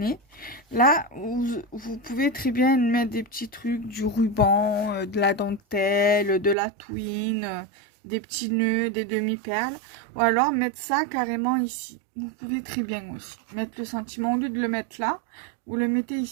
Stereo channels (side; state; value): left; drops out; at 6.6 s